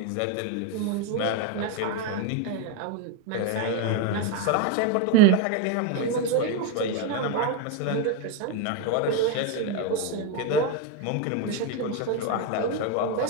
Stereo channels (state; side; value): different; both; correlation 0.02